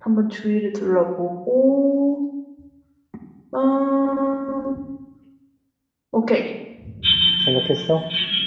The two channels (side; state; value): both; identical; correlation 1.00